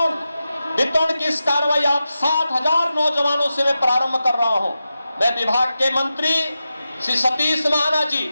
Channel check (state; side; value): inverted; both; correlation -0.91